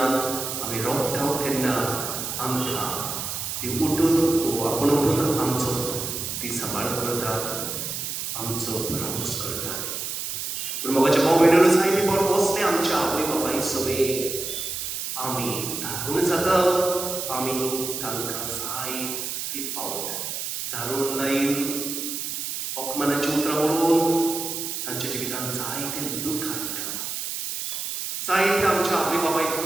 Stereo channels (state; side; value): noise; right; hiss, 4 dB below the sound